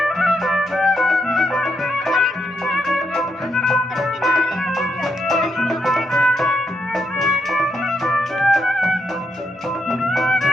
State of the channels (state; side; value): normal; both; correlation 0.79